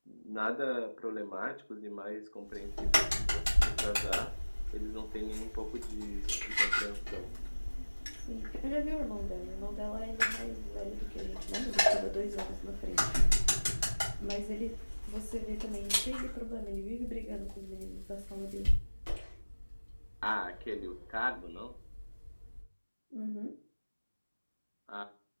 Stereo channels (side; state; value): both; inverted; correlation -1.00